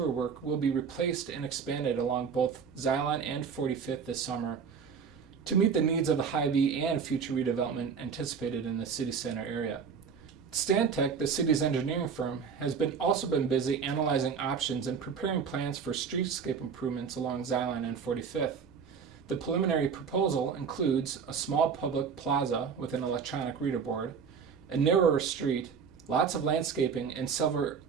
work will be replaced and expanded along both Zion and 45th this summer to meet the needs of the Hy-Vee and future redevelopment anticipated in the city center area. Stantec, the city's engineering firm, has also been busy analyzing options and preparing plans for streetscape improvements along Zion and 45th. The preliminary proposal includes a small public plaza with an electronic reader board, a narrower street, lots of landscaping, and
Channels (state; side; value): quieter; left; 6.3 dB